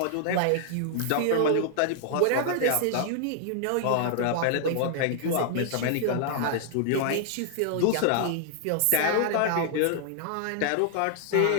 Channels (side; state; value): both; different; correlation -0.01